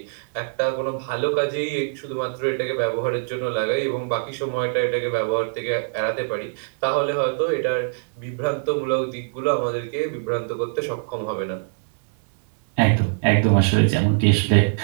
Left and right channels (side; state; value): left; silent; digital silence